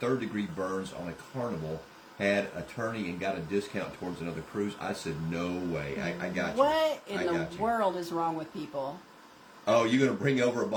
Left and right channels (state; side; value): identical; both; correlation 1.00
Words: 3rd-degree burns on a Carnival. Had attorney and got a discount towards another cruise. I said, no way. I got you. What in the world is wrong with people? Oh, you're going to bring over a